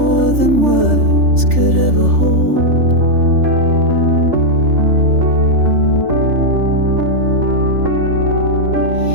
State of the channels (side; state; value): left; late; 3.4 ms